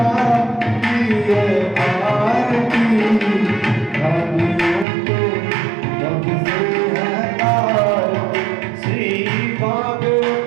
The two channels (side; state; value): left; drops out; at 4.9 s